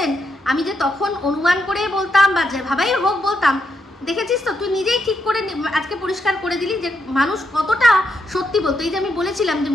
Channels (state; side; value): normal; both; correlation 0.80